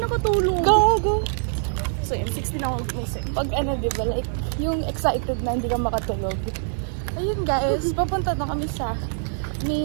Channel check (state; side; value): silent; left; 59 dB below the other